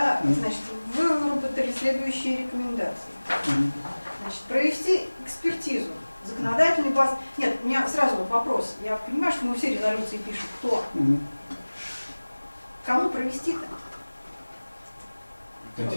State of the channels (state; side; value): inverted; both; correlation -1.00